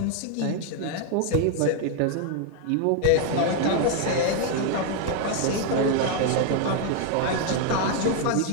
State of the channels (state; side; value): different; both; correlation 0.00